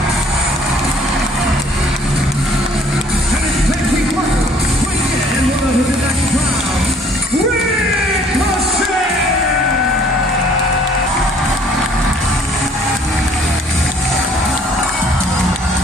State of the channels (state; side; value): normal; both; correlation 0.58